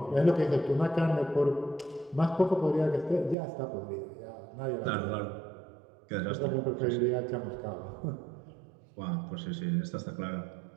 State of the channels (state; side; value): drops out; left; at 3.4 s